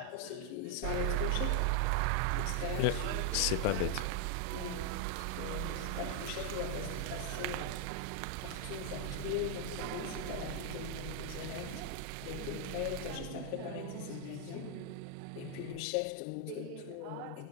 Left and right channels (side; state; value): both; different; correlation 0.00